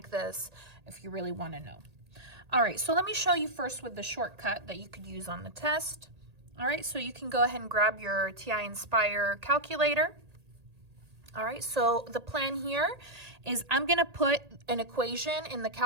this if you really want to know. All right, so let me show you first with the shortcut that you could use on the test. All right, so you can go ahead and grab your TI Inspire calculator. All right, so the plan here is I'm going to put an equation in the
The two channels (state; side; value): late; left; 1.8 ms